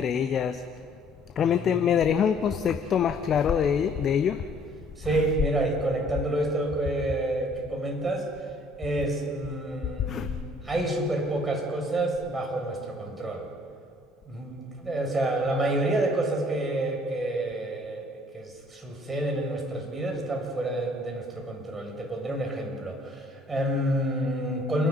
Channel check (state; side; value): normal; both; correlation 0.59